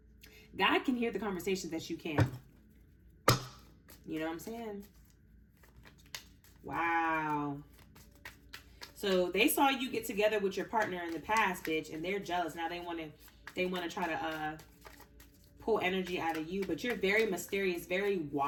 God can hear the conversations that you can. You know what I'm saying? Wow. So they saw you get together with your partner in the past, bitch, and they're jealous. Now they want to try to pull energy out of you, but you're very mysterious, very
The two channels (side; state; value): both; identical; correlation 1.00